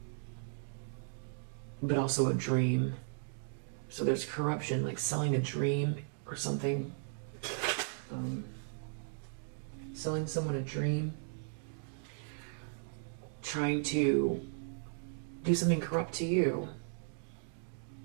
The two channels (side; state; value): left; silent; digital silence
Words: but also a dream. So there's corruption, like selling a dream or something. Selling someone a dream. Trying to do something corrupt to you.